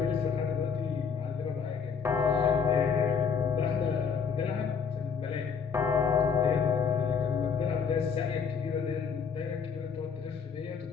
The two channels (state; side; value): quieter; right; 6.2 dB